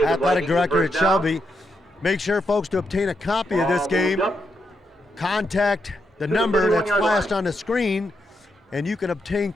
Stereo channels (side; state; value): both; normal; correlation 0.82